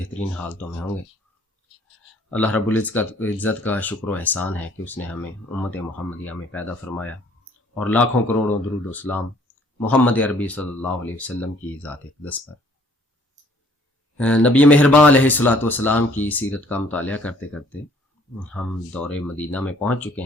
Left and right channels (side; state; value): both; normal; correlation 0.59